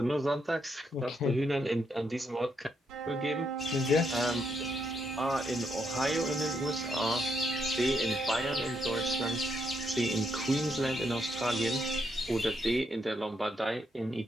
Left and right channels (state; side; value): normal; both; correlation 0.77